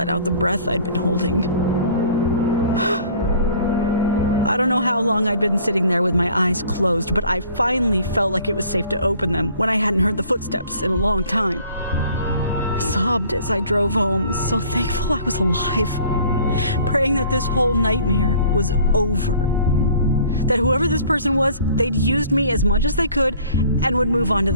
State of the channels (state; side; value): inverted; both; correlation -0.53